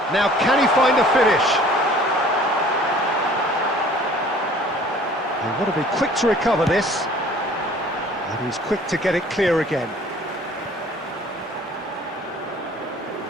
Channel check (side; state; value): both; normal; correlation 0.52